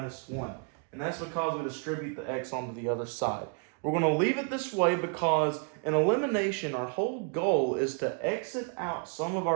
1. And that's because we distribute the x onto the other side. We're going to leave it this way because in elimination, our whole goal is to exit out some of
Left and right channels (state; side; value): quieter; left; 37.1 dB